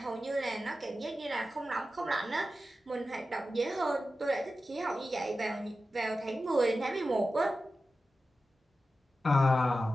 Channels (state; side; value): normal; both; correlation 0.93